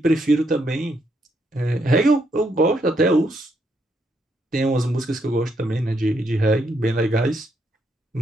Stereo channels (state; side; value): normal; both; correlation 0.76